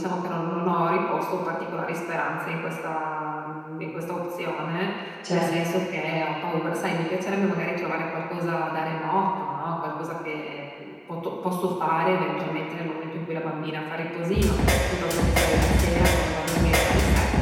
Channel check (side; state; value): both; identical; correlation 1.00